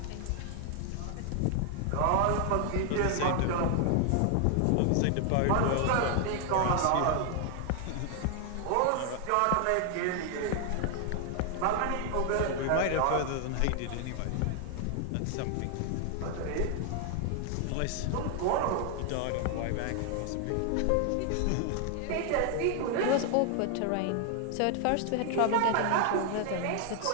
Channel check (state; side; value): different; both; correlation 0.00